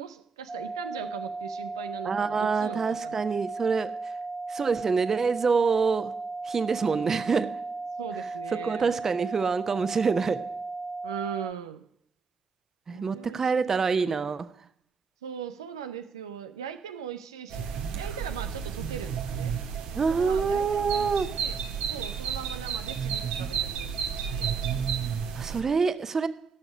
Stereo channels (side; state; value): left; quieter; 5.1 dB